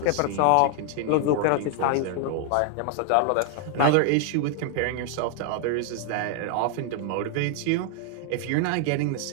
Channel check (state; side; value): different; both; correlation 0.00